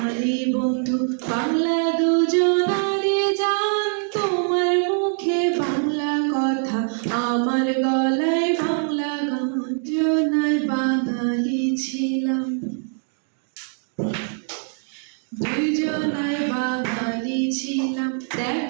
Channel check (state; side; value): silent; left; 57 dB below the other